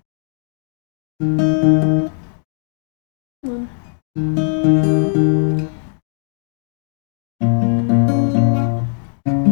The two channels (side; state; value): right; silent; 66 dB below the other